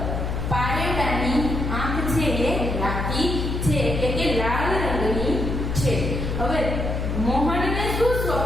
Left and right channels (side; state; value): left; noise; hum, 2 dB below the sound